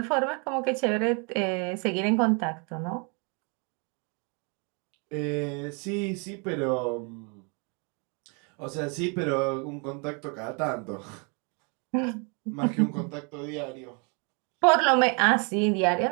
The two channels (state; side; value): quieter; left; 34.7 dB